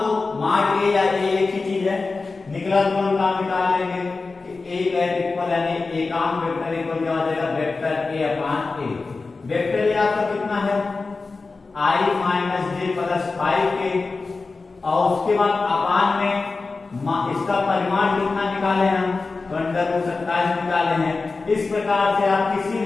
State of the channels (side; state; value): right; quieter; 3.9 dB